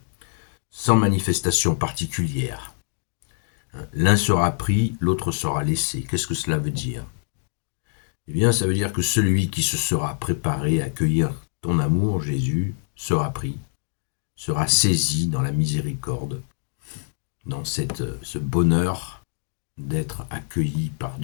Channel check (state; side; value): silent; right; 60 dB below the other